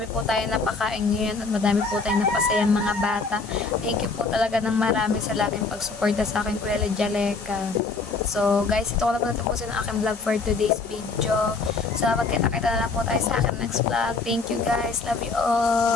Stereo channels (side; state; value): right; quieter; 4.2 dB